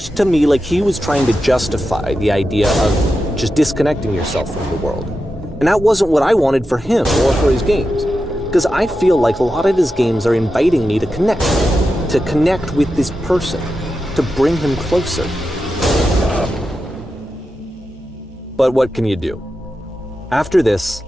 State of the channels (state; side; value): normal; both; correlation 0.90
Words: to me like he was trying to justify the idea of just disconnecting yourself from the world. And that wasn't what I wanted for him or for his games. Because I feel like a lot of his games are inviting me to connect with this person, to bring him closer. But what can you do? After this,